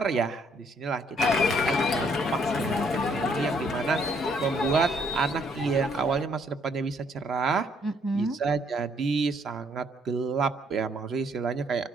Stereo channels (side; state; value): both; normal; correlation 0.67